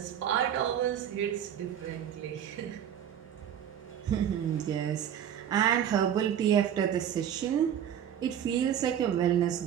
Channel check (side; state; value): left; quieter; 9.5 dB